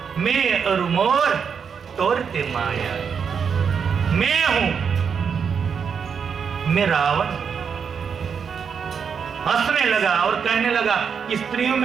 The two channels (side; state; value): left; quieter; 6.6 dB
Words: मैं और मोर तोड़ते माया। मैं हूं, मैं रावण। हंसने लगा और कहने लगा कि स्त्रियों